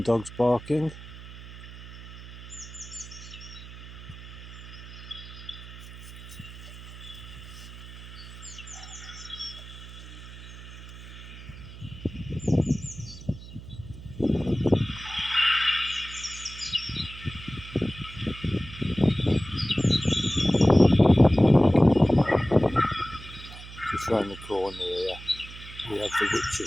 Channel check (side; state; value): right; noise; hum, 14 dB below the sound